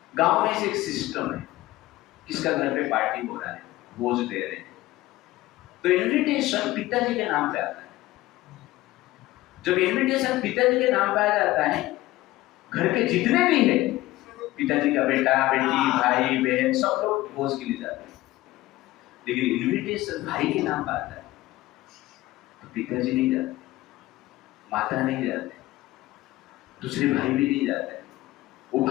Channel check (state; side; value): quieter; right; 17.3 dB